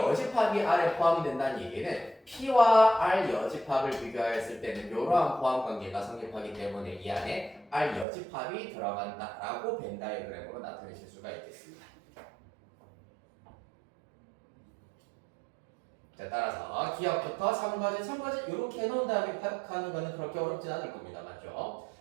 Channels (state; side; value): drops out; left; at 8.1 s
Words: R에 포함이 된다는 얘기는 P와 R 여집합을 비교하였을 때는 이러한 포함 관계가 성립하기 때문에 이 안에 R 여집합이 들어간다라고 벤 다이어그램으로 나타내실 수가 있겠습니다. 자, 따라서 기억부터 첨가지 이렇게 해놓은 다음에 파악하는 거는 그렇게 어렵진 않을 겁니다. 맞죠?